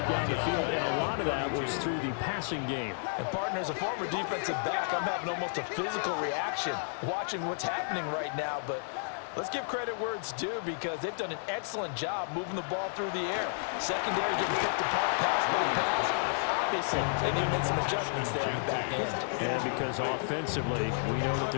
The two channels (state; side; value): silent; right; digital silence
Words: down the field, and a lot of that was through the passing game. And partner, as a former defensive back, I'm having almost a physical reaction watching what's happening right now. But let's give credit where it's due because they've done an excellent job moving the ball through the air. Secondary getting picked apart pass by pass. Obviously, they need to make some adjustments there in the back end. And because offensively, we know that